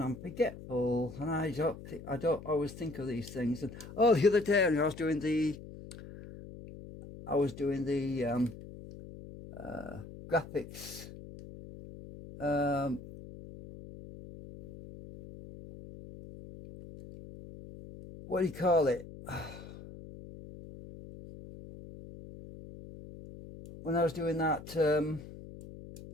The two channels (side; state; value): left; noise; hum, 14 dB below the sound